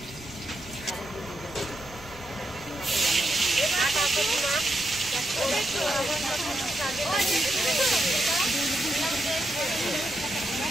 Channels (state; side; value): noise; right; rumble, 19 dB below the sound